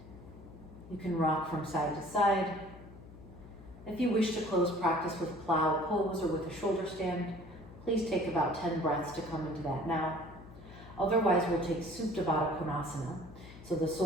You can rock from side to side. If you wish to close practice with plow pose or with a shoulder stand, please take about 10 breaths to come into that now. Otherwise, we'll take Supta Baddha Konasana. So the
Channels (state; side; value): noise; left; hum, 17 dB below the sound